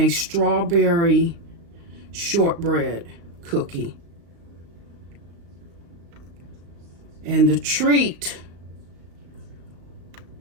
strawberry shortbread cookie. And the treat,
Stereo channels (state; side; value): late; left; 35 ms